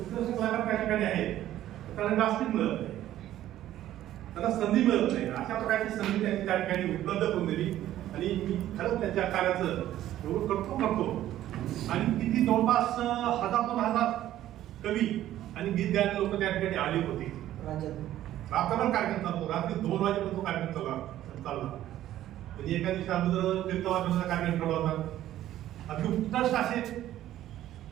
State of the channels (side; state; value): left; quieter; 13.1 dB